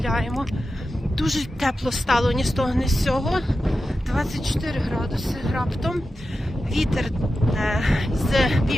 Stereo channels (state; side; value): normal; both; correlation 0.91